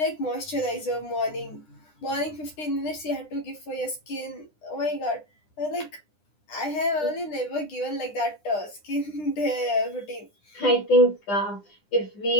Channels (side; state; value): right; late; 9.9 ms